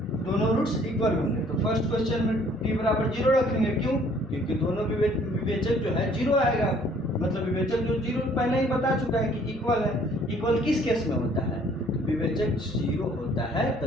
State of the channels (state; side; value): normal; both; correlation 0.59